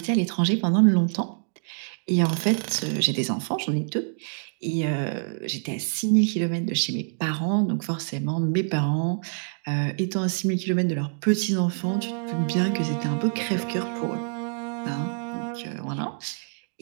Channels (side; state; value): left; silent; digital silence